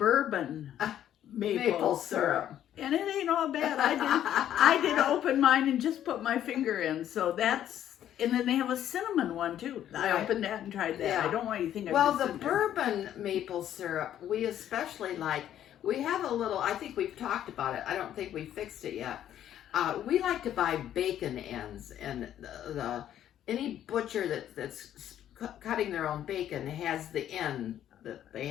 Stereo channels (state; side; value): quieter; right; 11.1 dB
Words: maple syrup. And it ain't all bad. I did open mine and just put my finger in. So that's, and then they have a cinnamon one too. I opened that and tried that. Yeah. I don't want you to think Well, the bourbon maple syrup, we especially like. We have a little, I think we've talked about it. I don't think we fixed it yet. We like to buy bacon ends, and any butcher that's cutting their own bacon has the end that they